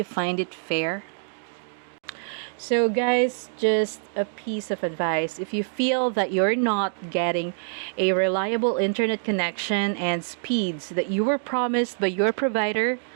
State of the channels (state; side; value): silent; left; digital silence